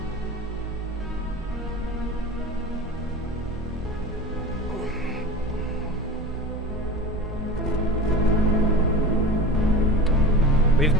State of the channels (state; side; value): normal; both; correlation 0.32